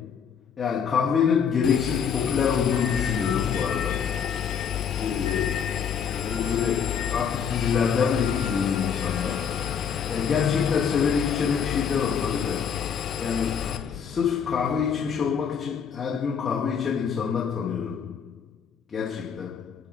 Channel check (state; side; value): quieter; right; 7.1 dB